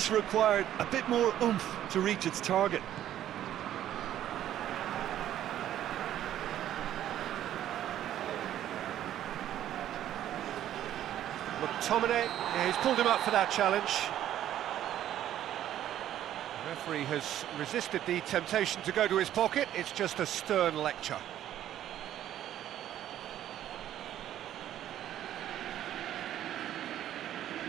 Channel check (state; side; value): quieter; left; 11.8 dB